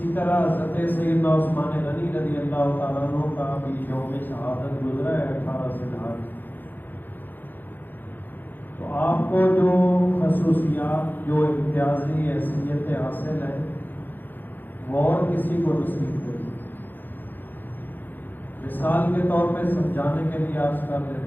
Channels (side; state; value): right; late; 0.089 ms